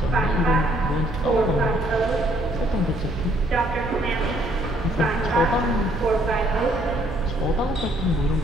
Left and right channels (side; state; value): both; normal; correlation 0.66